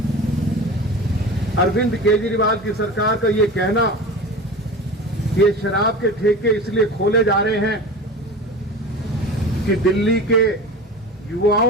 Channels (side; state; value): both; normal; correlation 0.33